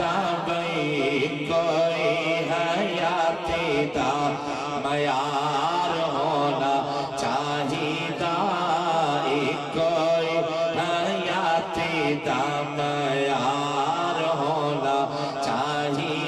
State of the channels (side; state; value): both; identical; correlation 1.00